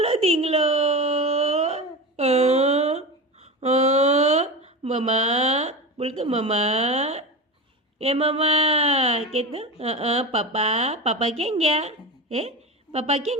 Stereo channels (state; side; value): normal; both; correlation 0.24